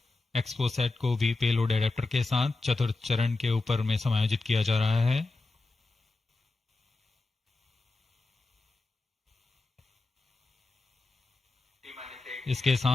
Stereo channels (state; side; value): quieter; right; 3.3 dB